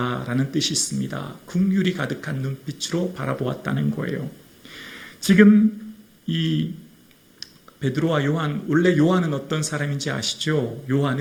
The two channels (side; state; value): both; identical; correlation 1.00